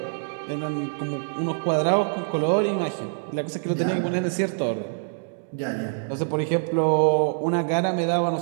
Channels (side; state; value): left; silent; digital silence